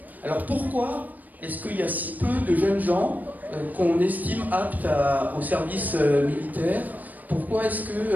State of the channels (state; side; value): late; left; 0.082 ms